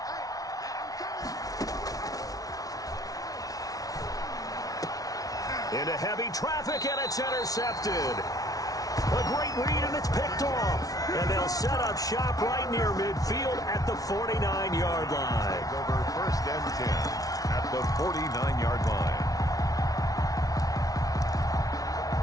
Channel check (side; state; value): right; late; 0.18 ms